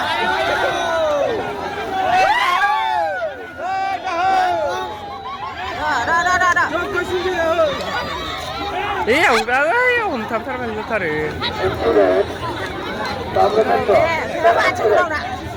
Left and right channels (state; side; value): identical; both; correlation 1.00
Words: 이 ông tham tháp anh ta rồi Accurate. Compromise. 네, 그럼 아침부터 라.